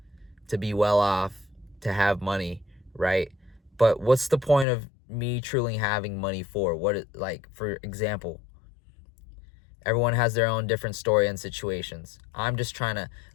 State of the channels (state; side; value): drops out; right; at 4.7 s